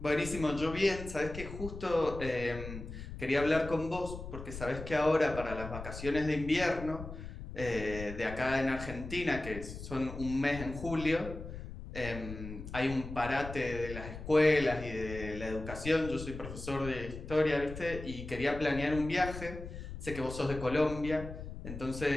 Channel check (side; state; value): left; noise; rumble, 10 dB below the sound